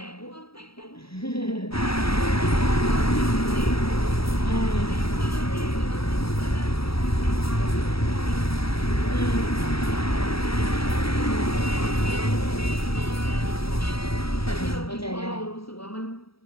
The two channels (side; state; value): right; late; 0.76 ms